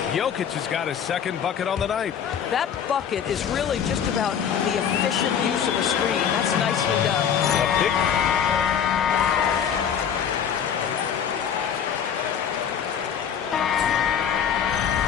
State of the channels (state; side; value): quieter; right; 8.1 dB